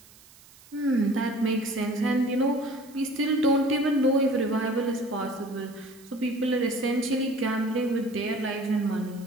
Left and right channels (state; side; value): noise; right; hiss, 24 dB below the sound